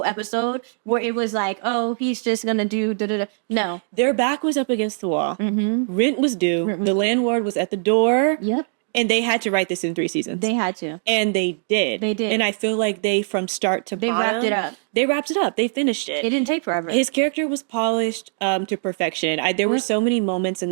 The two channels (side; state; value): left; silent; digital silence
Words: episode where it was like, oh, he's just going to do da-da-da. No. Their back was up against the wall. Rent was due. The landlord was at the door. Yep. And they had to write this in 3 seasons. They had to. And they did. They did. And I feel like they, from start to bottom, wrapped it up. They wrapped it up. They finished it. It didn't take forever. His character was polished to perfection. There were so many moments in